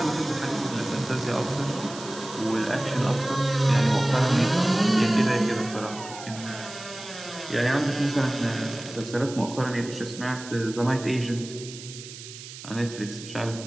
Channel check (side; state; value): right; noise; hiss, 14 dB below the sound